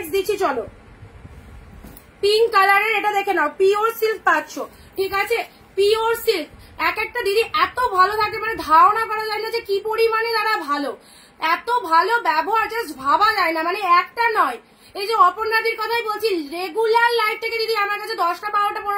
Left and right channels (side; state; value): both; identical; correlation 1.00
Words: দিচ্ছি চলো, পিঙ্ক কালারের, এটা দেখে নাও, পিওর সিল্ক পাচ্ছ, ঠিক আছে, পিওর সিল্ক। এক একটা দিদি এত ভালো থাকে, মানে ধারণা করা যায় না যে কি পরিমাণে তারা ভালো, এত ভালো ব্যবহার জাস্ট ভাবা যায় না, মানে একটা নয়। এই যে অপর্ণাদির কথাই বলছি, রেগুলার লাইফ থেকে দিদি আমার কাছে 10টা 12টা